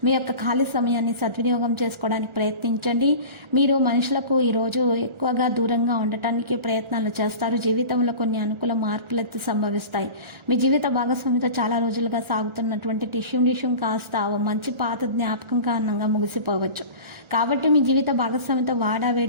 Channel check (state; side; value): late; left; 1.4 ms